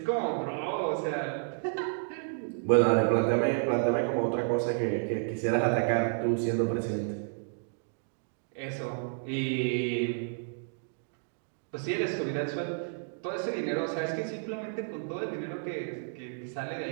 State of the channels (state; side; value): silent; left; digital silence